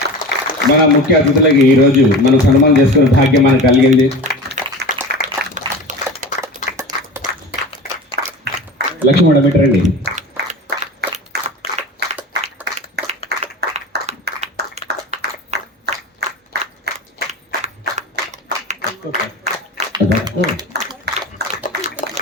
మన ముఖ్య అతిథులకి ఈరోజు మనం సన్మానం చేసుకునే భాగ్యం మనకు కలిగింది. లక్ష్మీ మేడం పెట్టండి.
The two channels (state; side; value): normal; both; correlation 0.33